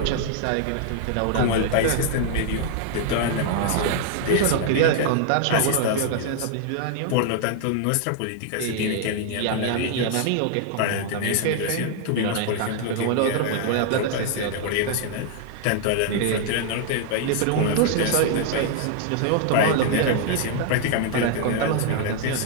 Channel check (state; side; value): different; both; correlation 0.00